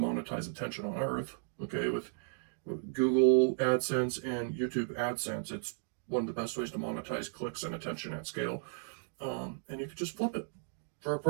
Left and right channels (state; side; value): silent; left; digital silence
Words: attention on earth, okay, with Google AdSense and YouTube AdSense. It's one of the best ways to monetize clicks and attention at scale. And you could just flip it for a